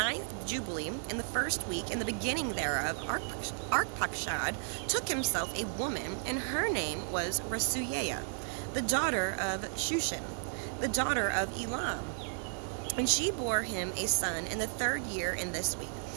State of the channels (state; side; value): silent; left; 55 dB below the other